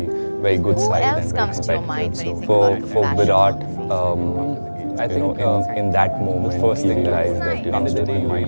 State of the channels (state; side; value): inverted; both; correlation -1.00